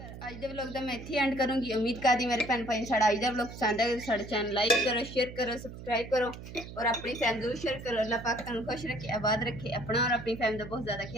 ਅੱਜ ਦੇ ਵਲੌਗ ਦਾ ਮੈਂ ਇੱਥੇ ਐਂਡ ਕਰੂੰਗੀ ਉਮੀਦ ਕਰਦੀ ਮੇਰੇ ਭੈਣ ਭਾਈ ਨੂੰ ਸਾਡਾ ਅੱਜ ਦਾ ਵਲੌਗ ਪਸੰਦ ਆਇਆ ਸਾਡੇ ਚੈਨਲ ਲਾਈਕ करो शेयर करो सब्सक्राइब करो और अपनी फैमिली जरूर शेयर करो अल्लाह पाक तुहानू खुश रखे आबाद रखे अपना और अपनी फैमिली का बहुत ज़्यादा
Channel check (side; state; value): right; noise; hum, 12 dB below the sound